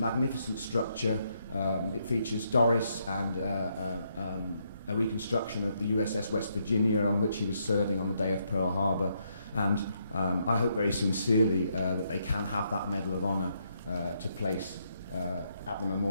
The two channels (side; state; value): both; inverted; correlation -0.76